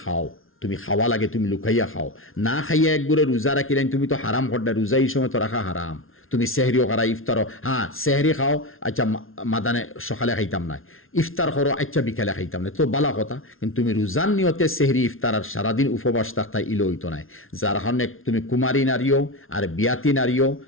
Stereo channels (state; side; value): late; right; 0.60 ms